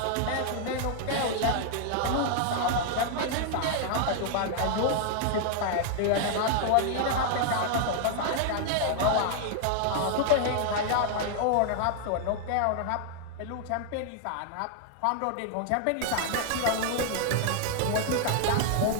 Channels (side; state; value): both; different; correlation -0.01